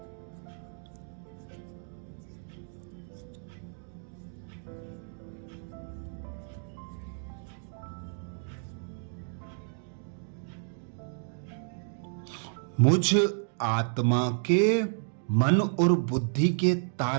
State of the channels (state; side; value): silent; left; 57 dB below the other